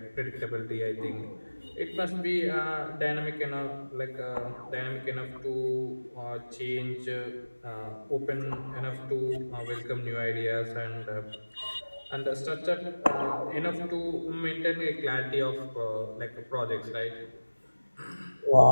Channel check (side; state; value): both; inverted; correlation -1.00